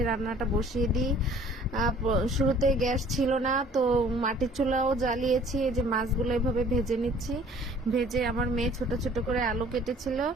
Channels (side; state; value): both; normal; correlation 0.53